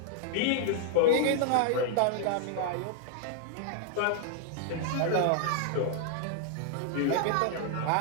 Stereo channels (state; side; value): different; both; correlation 0.00